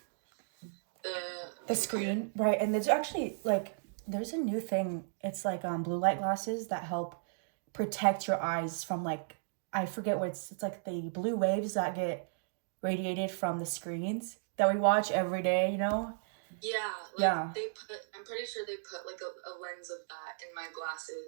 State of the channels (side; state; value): left; silent; digital silence